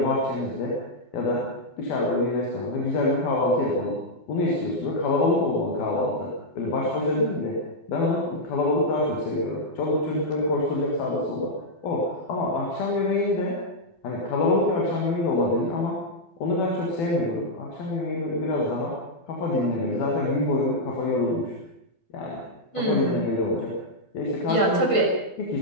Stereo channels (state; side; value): late; right; 12 ms